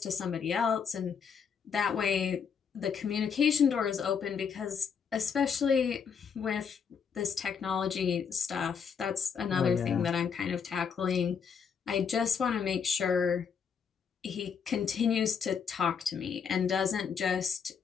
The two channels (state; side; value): quieter; right; 6.7 dB